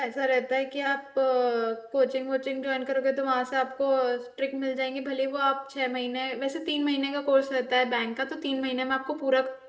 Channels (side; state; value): both; identical; correlation 1.00